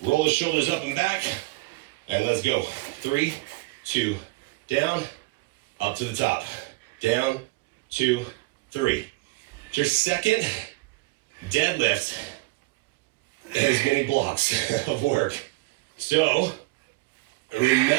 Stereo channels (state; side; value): quieter; left; 22.9 dB